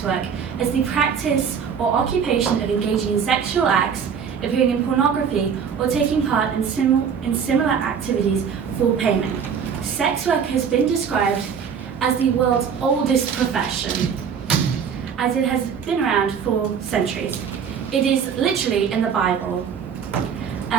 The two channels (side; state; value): left; quieter; 7.1 dB